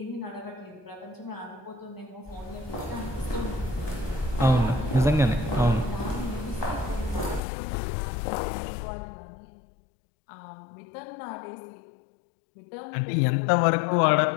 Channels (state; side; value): drops out; right; at 7.4 s